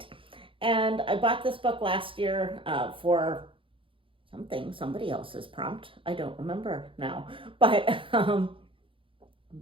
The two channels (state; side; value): late; left; 0.25 ms